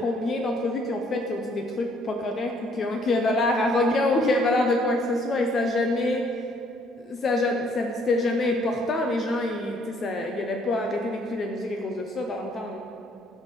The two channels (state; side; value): normal; both; correlation 0.64